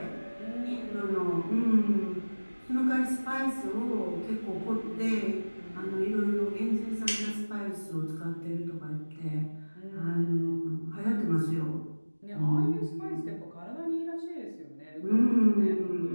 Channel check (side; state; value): both; inverted; correlation -1.00